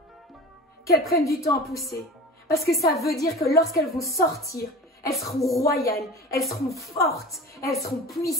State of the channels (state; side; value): normal; both; correlation 0.36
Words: qu'elles prennent du temps à pousser, parce que ça veut dire que lorsqu'elles vont sortir, elles seront royales, elles seront fortes, elles seront